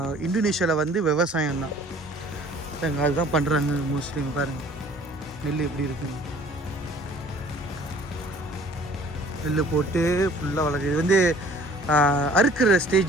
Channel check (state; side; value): normal; both; correlation 0.52